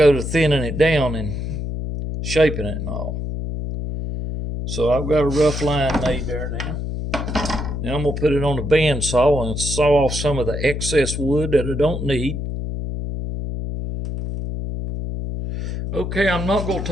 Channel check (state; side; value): noise; left; hum, 4 dB below the sound